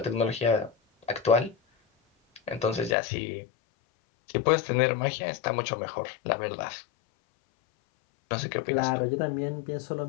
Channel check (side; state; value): right; drops out; at 3.0 s